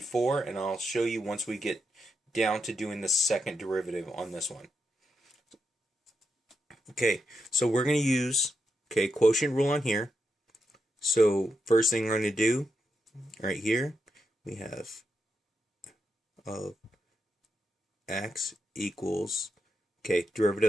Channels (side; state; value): both; normal; correlation 0.84